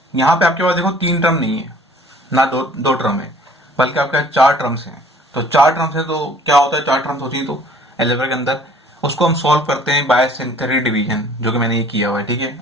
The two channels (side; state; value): both; normal; correlation 0.54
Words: यहाँ पे आपके पास देखो 3 टर्म नहीं है ना, दो टर्म है, बल्कि आपके पास 4 टर्म्स हैं। तो 4 टर्म्स है तो क्या होता है, 4 टर्म्स होती है तो अलजेब्रा के अंदर उसको हम सॉल्व करते हैं बाय सिंथेटिक डिवीजन, जो कि मैंने ये किया हुआ है, ठीक है।